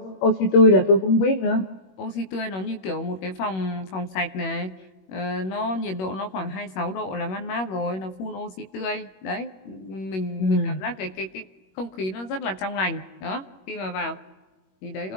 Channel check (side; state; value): right; late; 21 ms